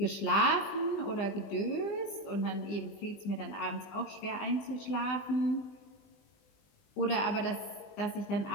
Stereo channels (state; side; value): late; right; 20 ms